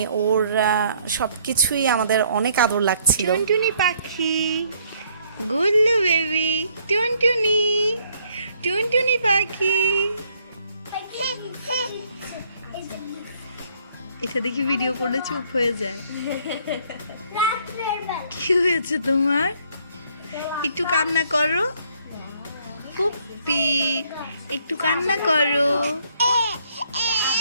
ওর সব কিছুই আমাদের অনেক আদর লাগছিল। টুনটুনি পাখি, গুল্লু বেবি, টুনটুনি, টুনটুনি পাখি। এটা দেখি ভিডিও করলে চুপ হয়ে যায়। কি হয়েছে তোমার? একটু কান্না করো পুপ্পি, একটু কান্না করো।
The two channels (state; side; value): inverted; both; correlation -0.66